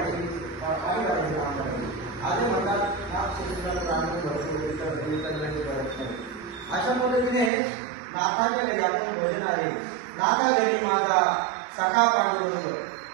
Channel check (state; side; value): drops out; left; at 7.5 s